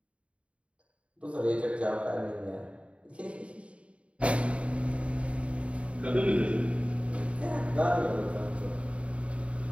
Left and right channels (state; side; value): late; left; 0.062 ms